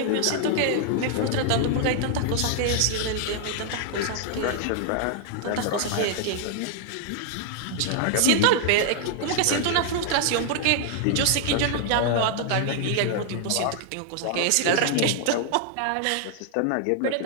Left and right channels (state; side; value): different; both; correlation 0.00